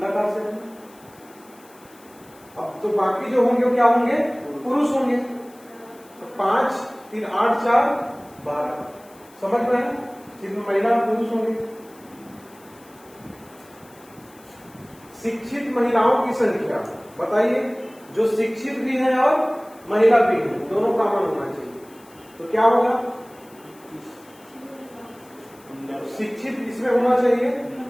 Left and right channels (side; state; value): left; noise; hiss, 26 dB below the sound